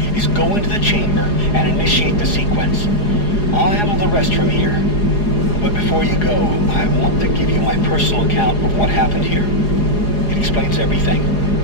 is go into the chamber and initiate the sequence. I'll handle the rest from here. But before you go, I want to give you my personal account of what happened here. It explains everything.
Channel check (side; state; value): right; late; 4.8 ms